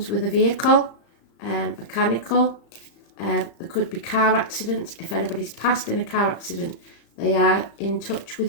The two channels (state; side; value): late; right; 35 ms